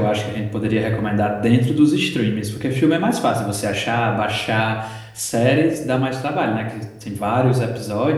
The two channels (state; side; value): identical; both; correlation 1.00